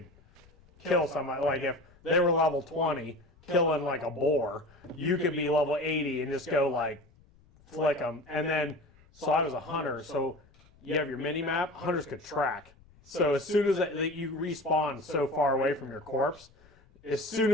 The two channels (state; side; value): noise; left; rumble, 28 dB below the sound